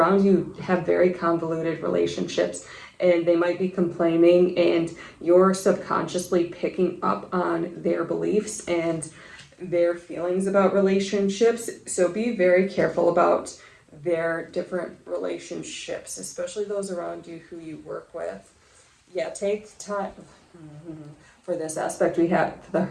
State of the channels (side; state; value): both; identical; correlation 1.00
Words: you have very convoluted relationships, and they might be complaining, and you're subconsciously picking up on their beliefs and their feelings about relationships. So be very careful about their different relationships, especially those around you who you work with. Yeah, take time for this aspect. We have the